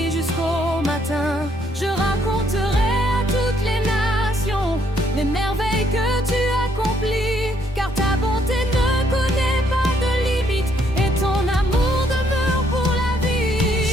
jusqu'au matin. Je raconterai à toutes les nations les merveilles que tu accomplis, car ta bonté ne connaît pas de limite et ton amour demeure pour la vie.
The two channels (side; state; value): both; normal; correlation 0.70